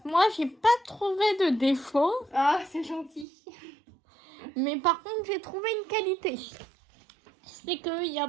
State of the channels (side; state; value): left; drops out; at 3.2 s